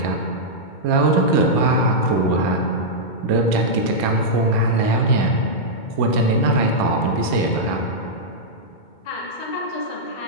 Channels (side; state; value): right; late; 2.2 ms